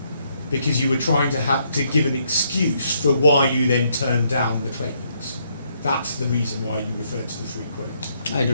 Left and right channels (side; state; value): both; inverted; correlation -0.73